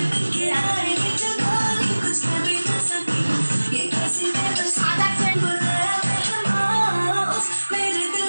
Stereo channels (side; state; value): both; inverted; correlation -1.00